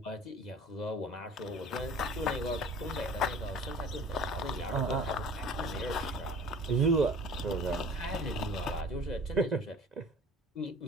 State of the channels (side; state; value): both; normal; correlation 0.45